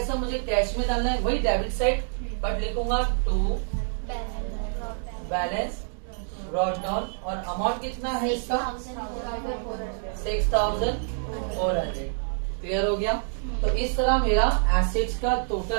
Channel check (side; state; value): left; silent; digital silence